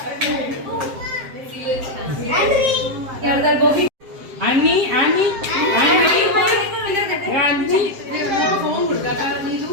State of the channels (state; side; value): late; left; 7.6 ms